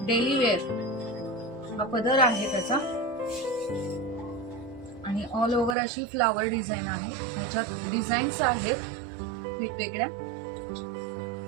डेली वेअर हा पदर आहे त्याचा आणि ऑल ओव्हर अशी फ्लावर डिझाईन आहे. ह्याच्यात डिझाईन्स आहेत वेगवेगळ्या.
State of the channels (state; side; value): drops out; left; at 5.8 s